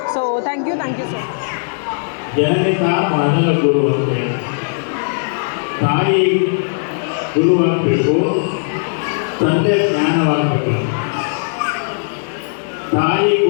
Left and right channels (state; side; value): silent; right; digital silence